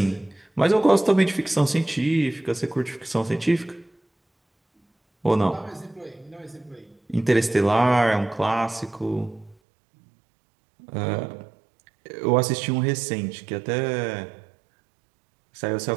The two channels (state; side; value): drops out; left; at 9.6 s